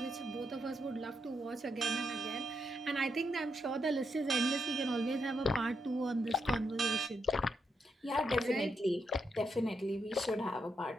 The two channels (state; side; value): normal; both; correlation 0.81